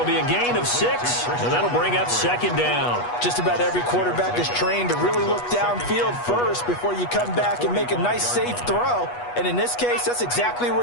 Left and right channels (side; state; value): right; late; 8.3 ms